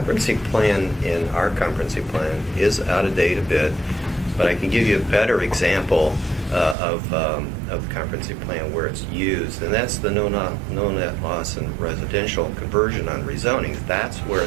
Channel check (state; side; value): drops out; left; at 6.8 s